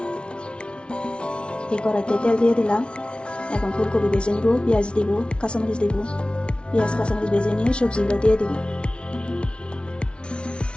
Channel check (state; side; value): late; right; 0.058 ms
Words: এই কড়াইতে তেল দিয়ে দিলাম। এখন ফুলকপি ভেজে নিব, পেঁয়াজ দিব, কাঁচামরিচ দিব। পেঁয়াজ কাঁচামরিচ ভেজে নিয়ে সবজিগুলো দিয়ে দিব।